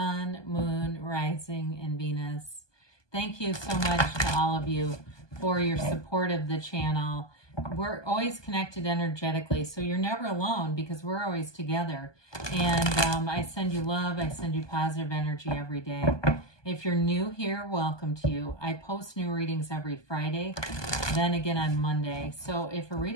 Moon, Rising, and Venus. Thank you so much to all of you for your support of the channel. We're always connected energetically, so you're never alone because we're always together. And I send you love, I send you positive energy every day. If you're new here, welcome to you. I post new readings every Friday, then again on Monday. So if a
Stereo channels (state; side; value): late; right; 1.2 ms